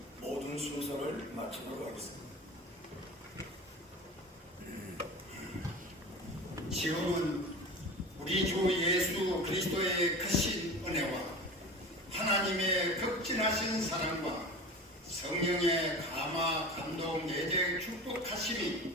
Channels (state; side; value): normal; both; correlation 0.33